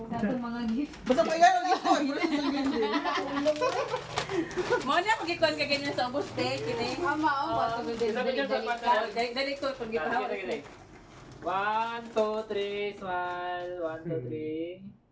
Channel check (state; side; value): identical; both; correlation 1.00